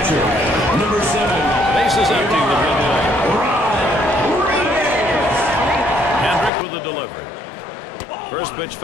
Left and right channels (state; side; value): drops out; right; at 6.5 s